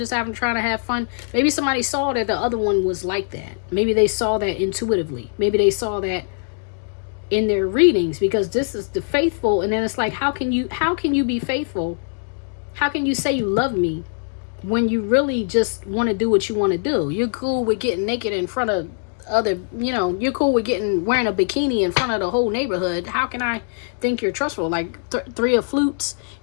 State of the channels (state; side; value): silent; right; digital silence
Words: trying to have fun. Maybe somebody saw that the other one was like that. Maybe they saw that intuitively. Maybe they saw that in their readings, because this is the faithful. And then it's like, how can you be faithful? How can you say you love me when you really just want to do what you want to do? You're cool with getting naked in front of other, you know, you're cool with wearing a bikini in front of the whole neighborhood. How can I think you're trustful? Like 3 of flutes,